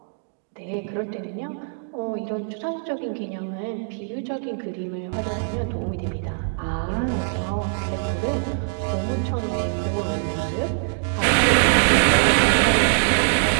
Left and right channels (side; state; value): left; silent; digital silence